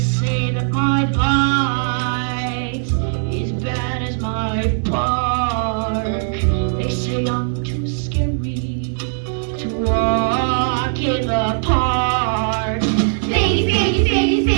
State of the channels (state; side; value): silent; left; digital silence